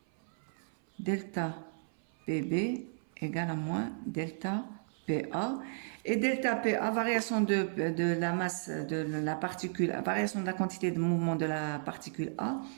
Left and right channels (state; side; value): silent; left; 55 dB below the other